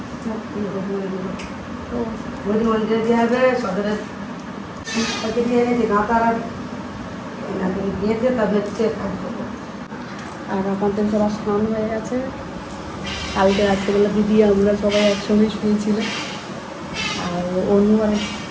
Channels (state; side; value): identical; both; correlation 1.00